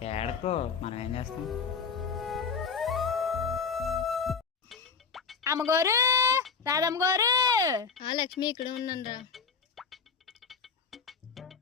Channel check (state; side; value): quieter; right; 5.3 dB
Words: ఏడకో, మనం ఏం చేస్తాం? అమ్మగారు, రాధమ్మ గారు. ఆ లక్ష్మి ఇక్కడ ఉన్నాను రా.